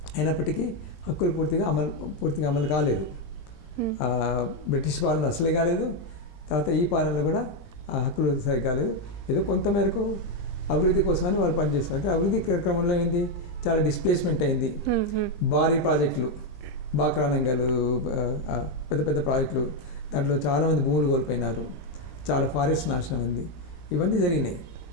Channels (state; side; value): late; right; 20 ms